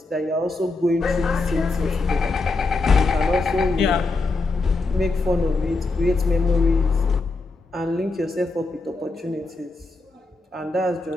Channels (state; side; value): quieter; right; 3.4 dB